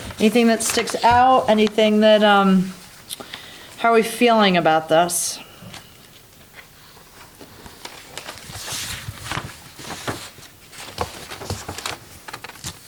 that sticks out, anything that, how are we feeling about this?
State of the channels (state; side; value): identical; both; correlation 1.00